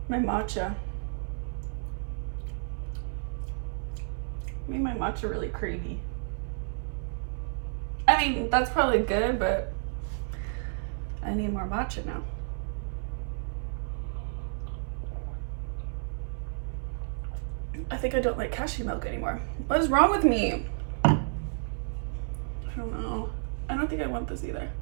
my matcha. Made my matcha really creamy. I mean, that's probably good, but I need more matcha now. I think I don't like cashew milk anymore. What is wrong with me? I don't know. I don't think I want this either.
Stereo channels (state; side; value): silent; left; 57 dB below the other